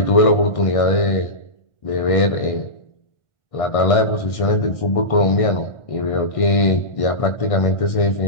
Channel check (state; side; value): late; right; 1.6 ms